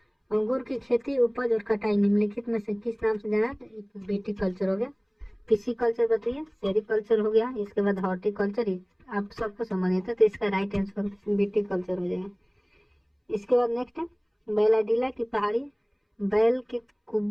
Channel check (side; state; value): both; identical; correlation 1.00